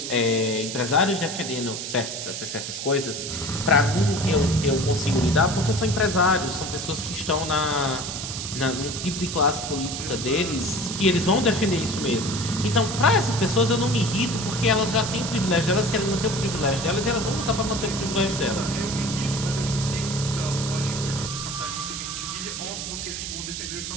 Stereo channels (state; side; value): noise; right; hiss, 6 dB below the sound